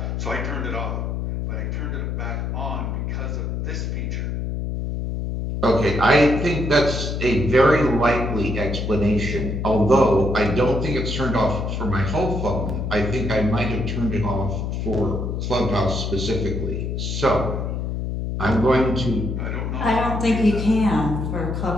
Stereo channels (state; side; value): noise; left; hum, 2 dB below the sound